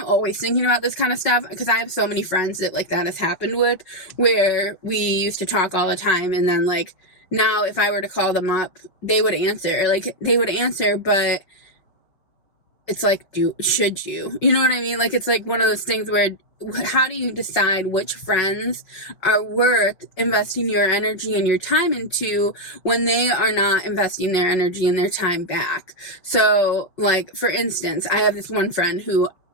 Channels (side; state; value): right; late; 5.6 ms